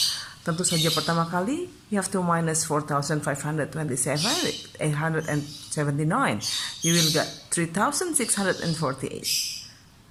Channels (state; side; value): identical; both; correlation 1.00